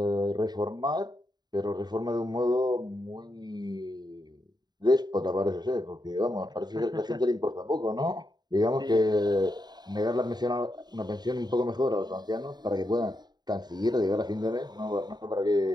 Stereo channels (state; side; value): late; left; 0.20 ms